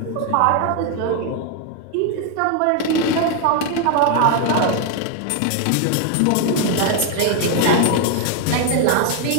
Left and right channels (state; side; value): different; both; correlation 0.01